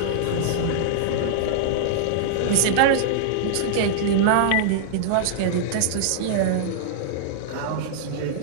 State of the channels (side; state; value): both; different; correlation -0.01